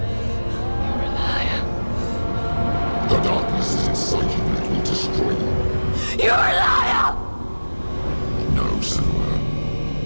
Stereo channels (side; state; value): both; inverted; correlation -1.00